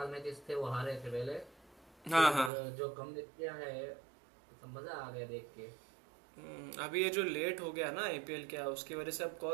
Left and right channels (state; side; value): drops out; left; at 2.5 s